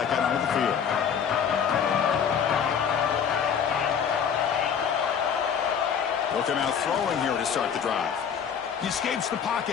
out onto the field. Looking out throwing here to start the drive. He escapes the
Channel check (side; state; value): right; quieter; 7.5 dB